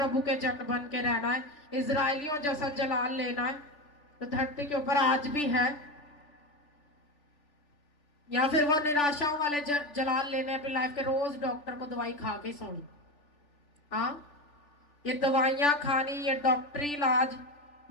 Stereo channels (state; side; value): late; right; 3.4 ms